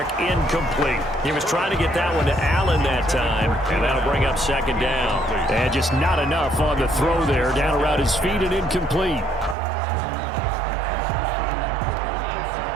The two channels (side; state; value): left; drops out; at 9.6 s